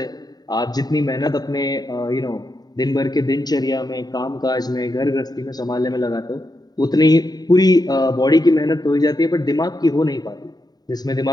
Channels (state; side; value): late; right; 0.19 ms